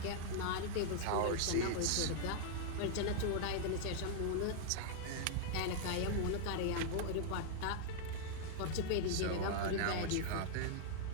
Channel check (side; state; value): both; different; correlation -0.01